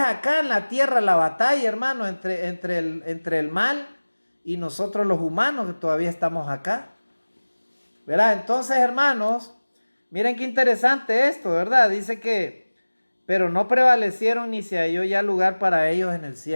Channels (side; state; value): both; inverted; correlation -1.00